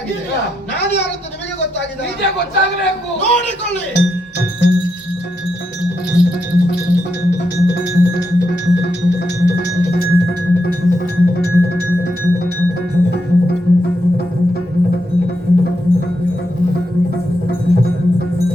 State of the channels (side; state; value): both; normal; correlation 0.82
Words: ನಾನು ಯಾರು ಅಂತ ನಿಮಗೆ ಗೊತ್ತಾಗಿದೆ. ನಿಜ ಗೊತ್ತಾಗಬೇಕು. ನೋಡಿಕೊಳ್ಳಿ.